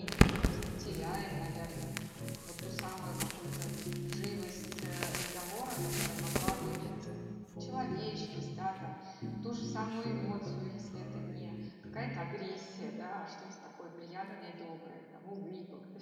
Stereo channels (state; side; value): identical; both; correlation 1.00